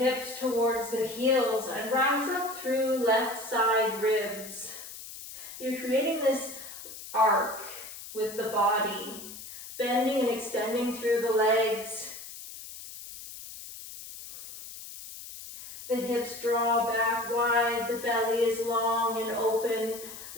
towards the heels and rise up through left side ribs. You're creating this arc with the body, bending and extending through the legs. The hips draw back wide, the belly is long and open,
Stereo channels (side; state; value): left; noise; hiss, 13 dB below the sound